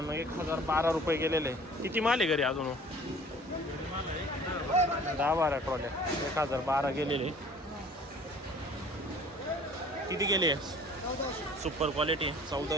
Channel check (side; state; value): both; normal; correlation 0.49